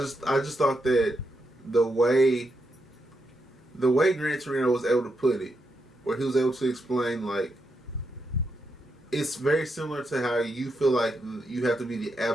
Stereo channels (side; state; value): both; normal; correlation 0.83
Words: thought that the way Gran Torino was able to put it, where he was able to explain, like, it's very similar to how you feel like you have to be the